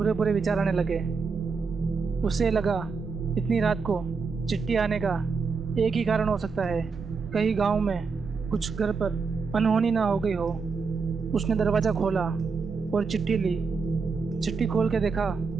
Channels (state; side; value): quieter; left; 4.9 dB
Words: बुरे विचार आने लगे। उसे लगा इतनी रात को चिट्ठी आने का एक ही कारण हो सकता है, कहीं गांव में कुछ घर पर अनहोनी ना हो गई हो। उसने दरवाज़ा खोला और चिट्ठी ली। चिट्ठी खोल के देखा